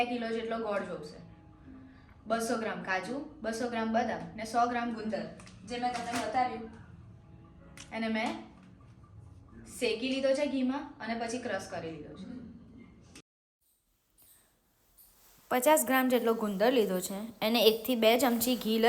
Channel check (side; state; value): both; identical; correlation 1.00